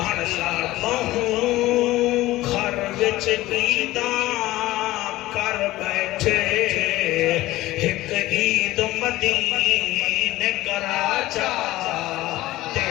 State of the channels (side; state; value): right; quieter; 17.1 dB